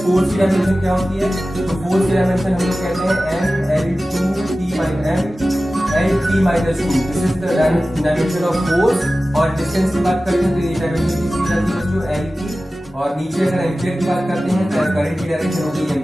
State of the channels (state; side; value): normal; both; correlation 0.96